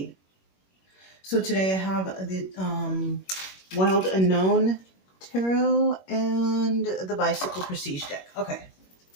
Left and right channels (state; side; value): late; right; 21 ms